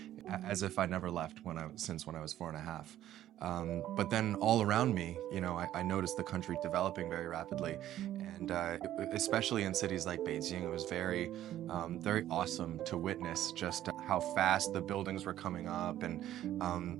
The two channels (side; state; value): left; quieter; 12.6 dB